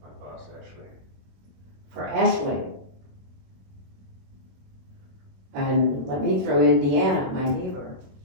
My boss Ashley. For Ashley. And let me throw in Deanna, my neighbor,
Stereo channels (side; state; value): left; late; 21 ms